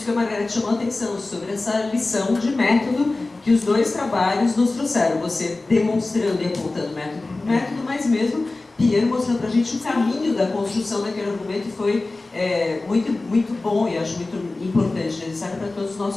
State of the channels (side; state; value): right; quieter; 3.2 dB